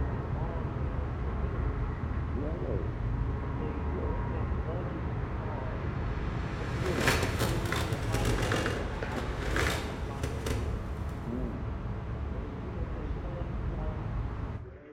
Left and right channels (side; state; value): both; identical; correlation 1.00